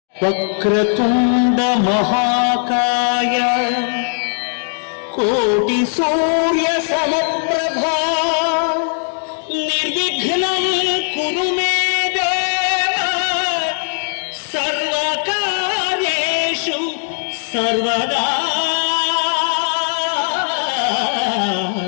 వక్రతుండ మహాకాయ కోటి సూర్య సమప్రభా నిర్విఘ్నం కురు మే దేవ సర్వకార్యేషు సర్వదా.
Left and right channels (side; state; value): right; silent; 62 dB below the other